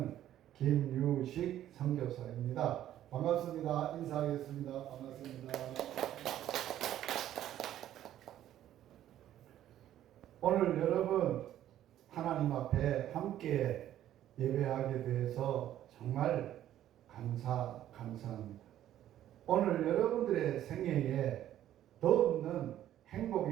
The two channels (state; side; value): quieter; left; 12.1 dB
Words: 김유식 선교사입니다. 반갑습니다. 인사하겠습니다. 반갑습니다. 오늘 여러분 하나님 앞에 함께 예배하게 돼서 정말 감사합니다. 오늘 여러분들의 생애에 더없는